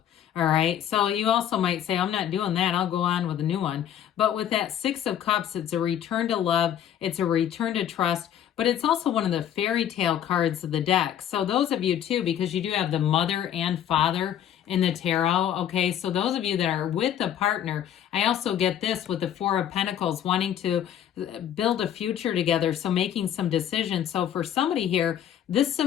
All right. So you also might say, I'm not doing that. I'll go on with a new one. But with that Six of Cups, it's a return to love. It's a return to trust. But it's also one of the fairy tale cards of the deck. So those of you too, because you do have the mother and father in the tarot. Okay, so those of you that are with a partner, I also get this with the Four of Pentacles, wanting to build a future together, so making some decisions. So for somebody here, This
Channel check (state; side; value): quieter; right; 10.1 dB